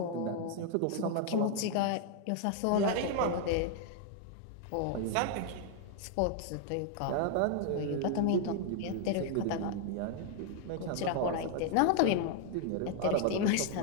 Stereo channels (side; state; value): both; different; correlation 0.00